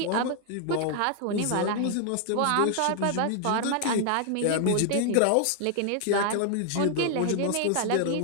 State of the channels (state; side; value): different; both; correlation 0.00